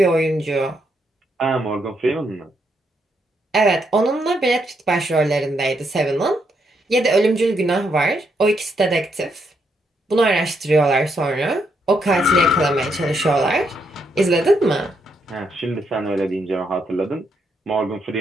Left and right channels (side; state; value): both; normal; correlation 0.77